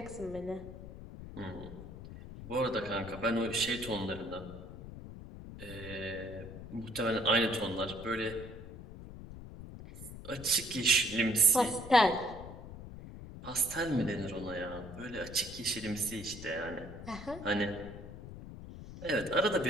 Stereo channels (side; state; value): left; noise; rumble, 12 dB below the sound